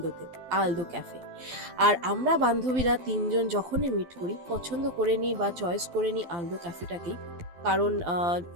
আলদো ক্যাফে। আর আমরা বান্ধবীরা তিনজন যখনই মিট করি পছন্দ করে নিই বা চয়েস করে নিই আলদো ক্যাফেটাকেই। কারণ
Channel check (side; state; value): left; late; 12 ms